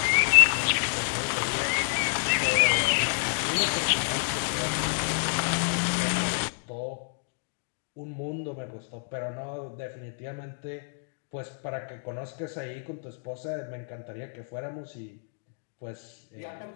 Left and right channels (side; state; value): right; silent; digital silence